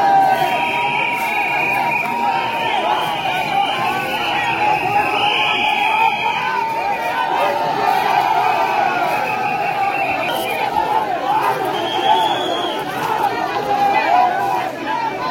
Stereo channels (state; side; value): identical; both; correlation 1.00